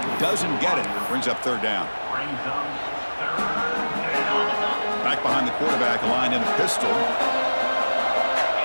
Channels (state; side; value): inverted; both; correlation -1.00